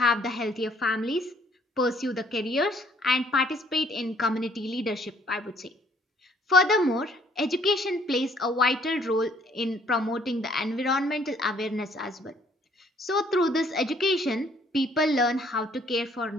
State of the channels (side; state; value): both; normal; correlation 0.62